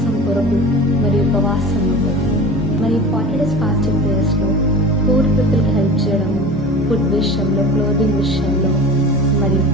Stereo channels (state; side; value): normal; both; correlation 0.35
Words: కొరకు మరి ఉపవాసం ఉండడం. మరి 40 days ఫాస్టింగ్ ప్రేయర్స్లో పూర్ పీపుల్కి హెల్ప్ చేయడం, ఫుడ్ విషయంలో, క్లోదింగ్ విషయంలో మరి